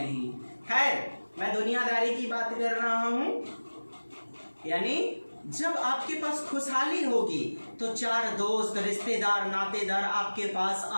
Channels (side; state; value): both; inverted; correlation -1.00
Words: खैर, मैं दुनियादारी की बात कर रहा हूँ। यानी जब आपके पास खुशहाली होगी तो 4 दोस्त, रिश्तेदार, नातेदार आपके पास